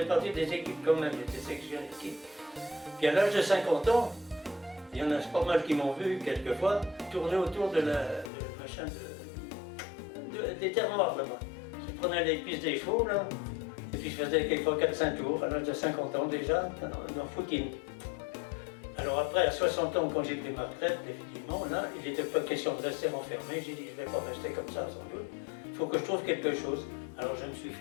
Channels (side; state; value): right; drops out; at 8.3 s